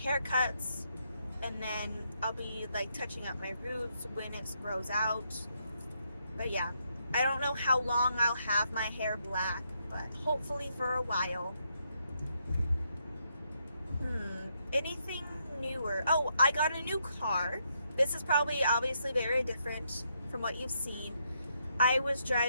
And then I'll be like touching up my roots when it grows out. But yeah, I don't know how long I'll have my hair black, but hopefully for a while. Anything newer? Oh, I got a new car. This is probably obviously very different from what you've seen. I was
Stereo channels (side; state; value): both; inverted; correlation -0.78